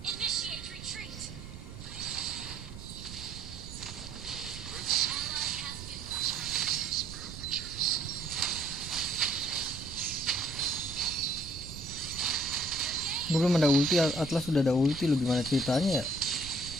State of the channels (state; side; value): noise; right; rumble, 12 dB below the sound